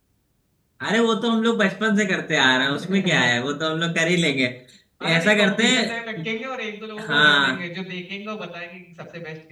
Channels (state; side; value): identical; both; correlation 1.00